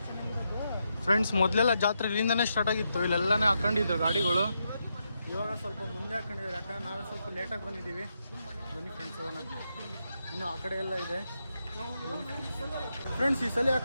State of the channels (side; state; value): both; inverted; correlation -0.83